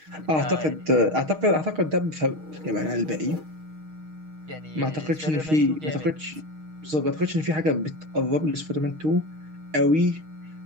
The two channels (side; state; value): left; late; 6.4 ms